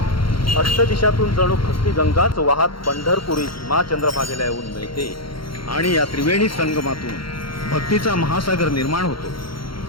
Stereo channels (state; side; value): late; right; 0.73 ms